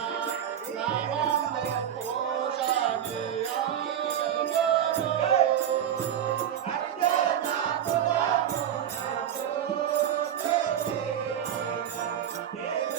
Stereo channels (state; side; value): quieter; left; 9.9 dB